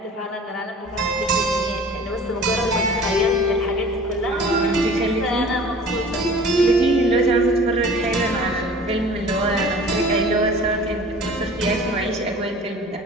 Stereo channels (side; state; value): both; normal; correlation 0.45